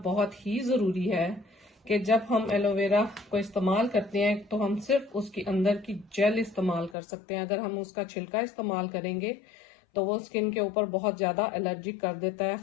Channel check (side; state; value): right; drops out; at 7.0 s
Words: बहुत ही ज़रूरी है कि जब हम एलोवेरा को इस्तेमाल करते हैं तो हम सिर्फ उसके अंदर की जेल इस्तेमाल कर सकते हैं। अगर हम उसका छिलका इस्तेमाल करेंगे तो वो स्किन के ऊपर बहुत ज़्यादा एलर्जिक कर देता है,